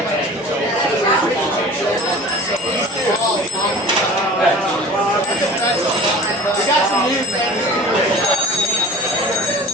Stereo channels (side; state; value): both; normal; correlation 0.40